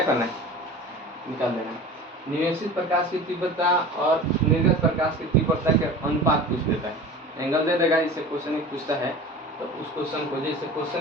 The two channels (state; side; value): normal; both; correlation 0.37